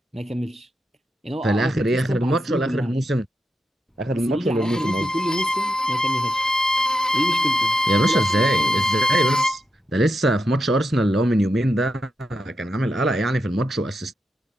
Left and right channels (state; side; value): normal; both; correlation 0.86